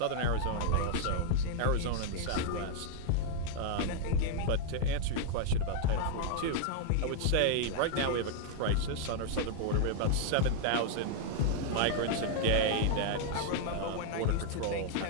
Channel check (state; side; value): different; both; correlation 0.00